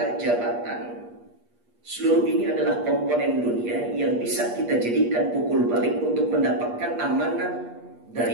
jabatan, seluruh ini adalah komponen dunia yang bisa kita jadikan pukul balik untuk mendapatkan amanah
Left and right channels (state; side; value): late; left; 8.4 ms